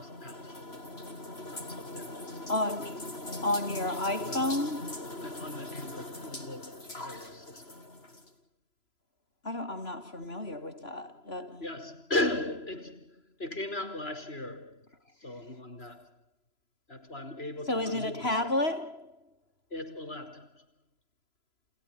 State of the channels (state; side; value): late; right; 3.0 ms